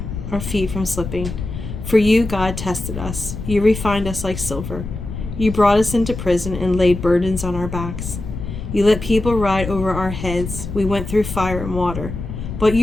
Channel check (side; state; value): left; noise; rumble, 7 dB below the sound